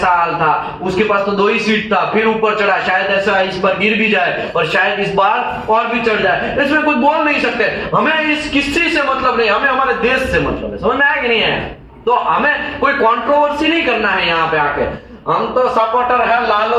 हाल था। उसके पास तो 2 ही सीट था, फिर ऊपर चढ़ा, शायद ऐसा इस बार गिर भी जाए और शायद इस बार और भी चढ़ जाए। इसमें कुछ बोल नहीं सकते। हमें इस किसी से मतलब नहीं, हमें हमारे देश से मतलब है। समझ में आया कि नहीं है? तो हमें कोई कंट्रोवर्सी नहीं करना है यहाँ पे आके। हम तो सपोर्टर है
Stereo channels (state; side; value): identical; both; correlation 1.00